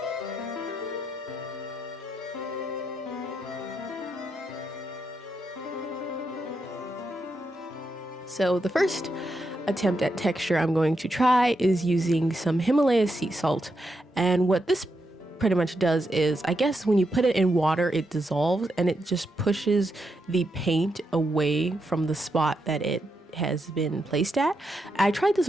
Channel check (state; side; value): normal; both; correlation 0.83